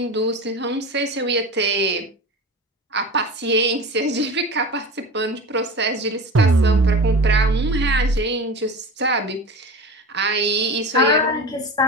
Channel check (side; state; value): both; normal; correlation 0.31